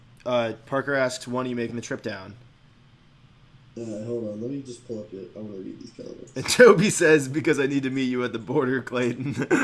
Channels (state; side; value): identical; both; correlation 1.00